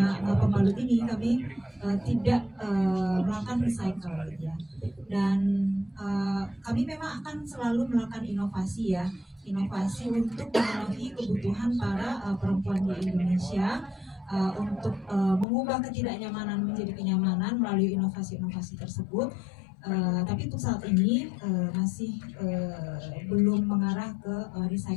pembalut ini kami tidak melakukan recycle ya. Dan kami memang akan selalu melakukan inovasi ya, inovasi untuk memenuhi kebutuhan para perempuan di Indonesia untuk mengubah ketidaknyamanan menjadi kenyamanan melalui inovasi-inovasi tersebut. Tapi untuk saat ini masih belum mengarah ke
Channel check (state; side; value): drops out; right; at 15.5 s